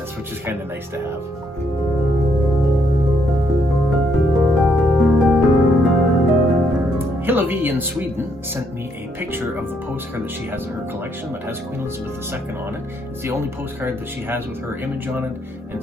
which is kind of nice to have. Hillevi in Sweden sent me a picture of the postcard that she has in her collection that has Queen Elizabeth II on it. It's the only postcard that she has with her image on it, and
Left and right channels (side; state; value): both; normal; correlation 0.73